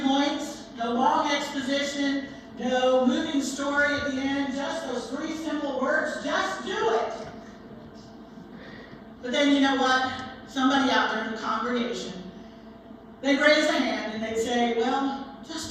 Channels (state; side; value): identical; both; correlation 1.00